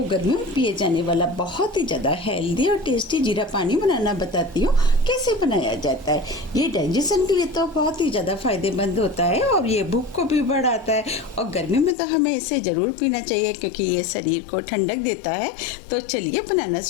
गर्मियों में पिए जाने वाला बहुत ही ज़्यादा हेल्दी और टेस्टी जीरा पानी बनाना बताती हूँ कैसे बनाया जाता है। ये डाइजेशन के लिए तो बहुत ही ज़्यादा फायदेमंद होता है और ये भूख को भी बढ़ाता है और गर्मी में तो हमें इसे ज़रूर पीना चाहिए क्योंकि ये शरीर को ठंडक देता है। तो चलिए बनाना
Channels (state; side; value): drops out; right; at 12.0 s